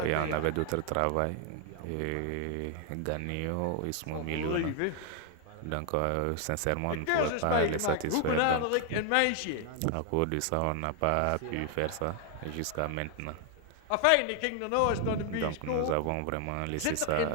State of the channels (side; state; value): both; different; correlation 0.00